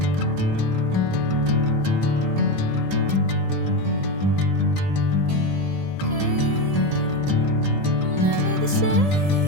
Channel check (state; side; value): late; left; 1.7 ms